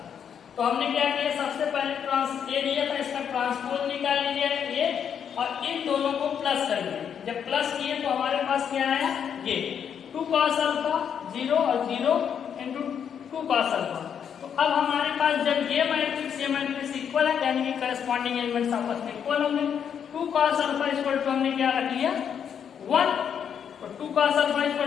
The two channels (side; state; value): right; quieter; 8.0 dB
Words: तो हमने क्या किया, सबसे पहले A दिया था, इसका ट्रांसपोज निकाल लिया A और इन दोनों को प्लस कर दिया। जब प्लस किए तो हमारे पास क्या आया, ये 2 cos अल्फा 0 और 0 इंटू 2 cos अल्फा। तो अब हमारे पास जब ये मैट्रिक्स इक्वल है, यानी कि करस्पॉन्डिंग एलिमेंट्स आपस में इक्वल होंगे। 2 cos अल्फा इक्वल टू हमने क्या रख लिया 1, तो 2 cos अल्फा